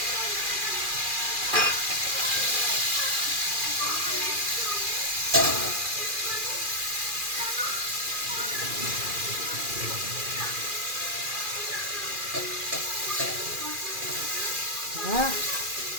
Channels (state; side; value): late; left; 2.4 ms